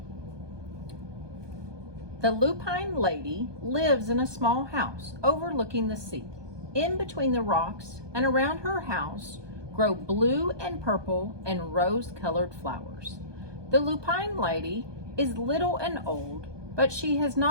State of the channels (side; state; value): left; late; 1.2 ms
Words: The lupine lady lives in a small house overlooking the sea. In between the rocks and around her house grow blue and purple and rose-colored flowers. The lupine lady is little and old, but she has